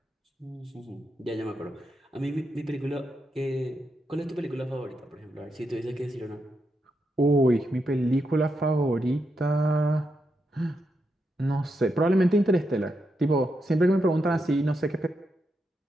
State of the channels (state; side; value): normal; both; correlation 0.84